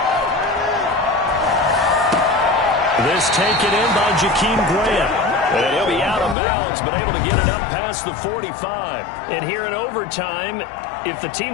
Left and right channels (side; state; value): right; drops out; at 6.4 s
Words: This taken in by Jakeem Grant. And he'll be out of bounds, but able to get it up past the 45. And here in overtime, if the